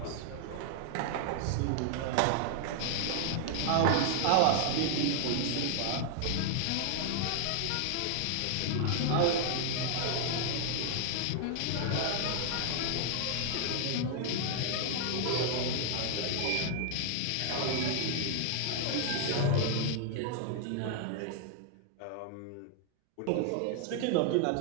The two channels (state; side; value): different; both; correlation 0.00